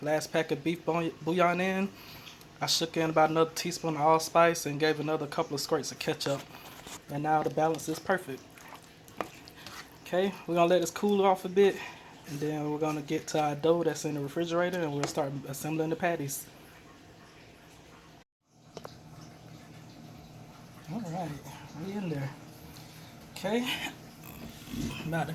pack of beef bouillon in. I shook in about another teaspoon of allspice and gave another couple of squirts of ketchup. And now the balance is perfect. Okay, we're gonna let this cool off a bit, and then we're gonna get to our dough that's in the refrigerator, and we'll start assembling the patties. Alright, we in there. Okay, I'm about to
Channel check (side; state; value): both; identical; correlation 1.00